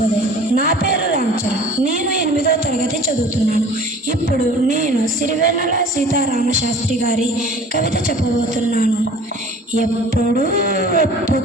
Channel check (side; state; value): both; normal; correlation 0.46